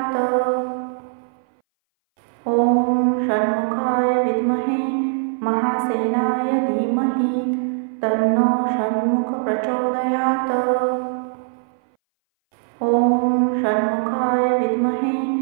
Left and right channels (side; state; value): left; silent; 61 dB below the other